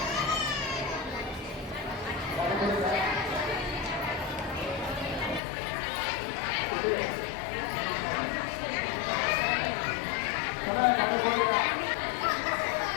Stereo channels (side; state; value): right; drops out; at 5.4 s